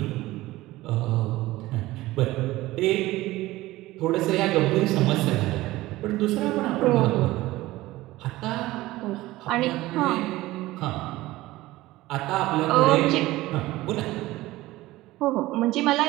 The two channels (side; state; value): left; quieter; 17.8 dB